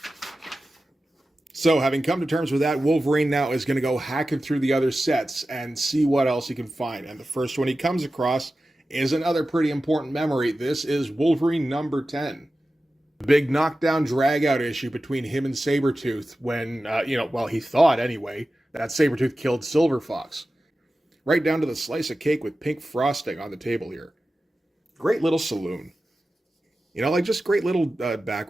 So, having come to terms with that, Wolverine now is going to go hacking through the other sets and see what else he can find. And the first one he comes across is another pretty important memory. This is Wolverine number 10. The big knockdown drag-out issue between him and Sabretooth when, he thought anyway, that Sabretooth killed Silver Fox. Right down to the slice of cake with pink frosting on the table here. Great little saloon. Just great little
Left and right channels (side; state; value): both; normal; correlation 0.94